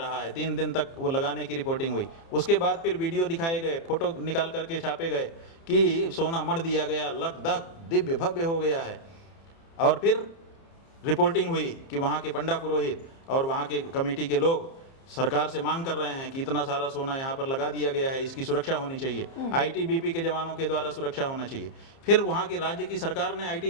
है, 3 दिन तक वो लगाने की रिपोर्टिंग हुई। उसके बाद फिर वीडियो दिखाए गए, फोटो निकाल करके छापे गए कि सोना मढ़ दिया गया, लकदक दिव्य भव्य हो गया है। और फिर रिपोर्टिंग हुई कि वहाँ के पंडा पुरोहित और वहाँ के कमेटी के लोग सरकार से मांग कर रहे हैं कि इतना सारा सोना यहाँ पर लगा दिया गया है, इसकी सुरक्षा होनी चाहिए, आईटीबीपी के जवानों के द्वारा सुरक्षा होना चाहिए। फिर वहाँ की राज्य की सरकार ने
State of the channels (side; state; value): right; late; 30 ms